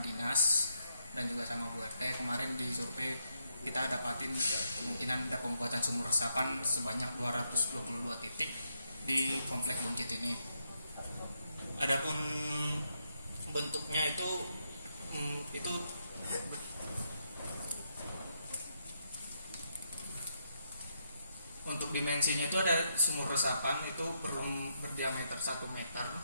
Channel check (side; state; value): both; inverted; correlation -0.79